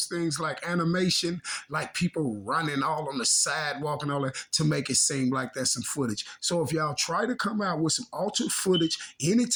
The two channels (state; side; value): identical; both; correlation 1.00